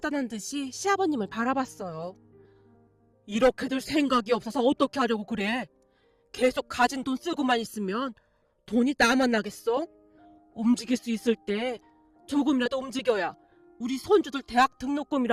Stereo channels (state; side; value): identical; both; correlation 1.00